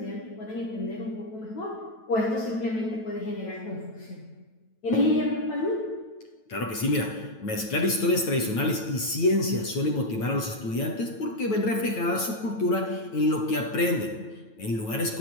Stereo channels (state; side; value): late; right; 9.1 ms